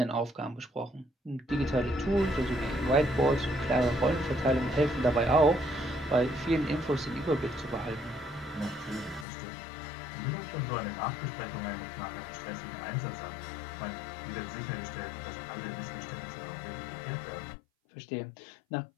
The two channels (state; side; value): drops out; right; at 9.2 s